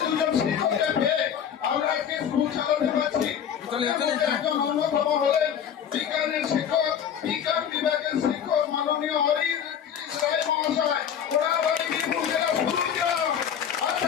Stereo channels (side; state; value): right; quieter; 8.6 dB